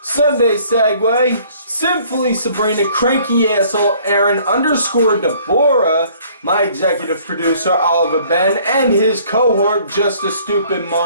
Sunday Segway, Simply Sabrina, Cranky Asshole, Aaron _Deborah, my executive producer Oliver Ben, and his cohort Just a Stupid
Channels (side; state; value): both; inverted; correlation -0.57